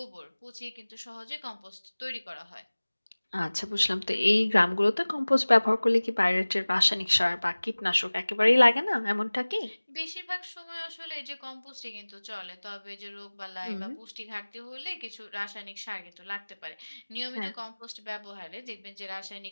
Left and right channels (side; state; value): both; inverted; correlation -1.00